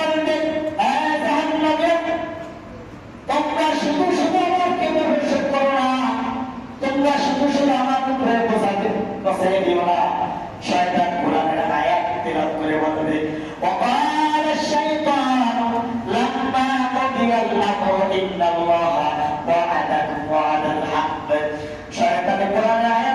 জাহান্নামে তোমরা শুধু শুধু আমাকে দর্শন করো না, তোমরা শুধু শুধু আমার উপরে বসাই দিও না। শয়তান কোরআনের আয়াত তেলাওয়াত করে বলবে, ওয়াকাল শাইতানু লাম্মা কুদিয়াল আমরু ইন্নাল্লাহা ওয়া'আদাকুম ওয়া'দাল হাক্ক। শয়তান কোরআনের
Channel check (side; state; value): both; identical; correlation 1.00